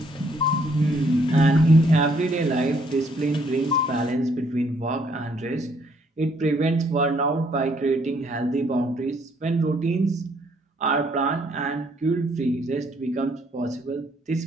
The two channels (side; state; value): both; normal; correlation 0.67